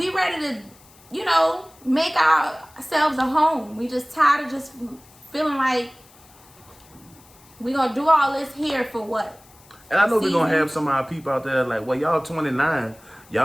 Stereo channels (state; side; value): noise; left; hiss, 26 dB below the sound